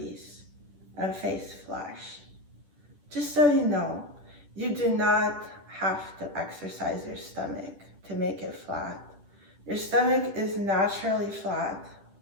and face flush. Just so you know, you do not have to exercise your stomach to make it flat. Your stomach is naturally flat,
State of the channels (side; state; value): left; late; 10 ms